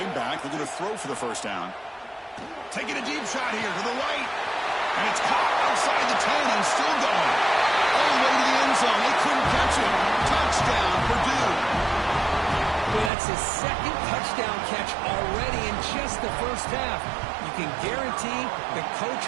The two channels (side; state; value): left; drops out; at 13.1 s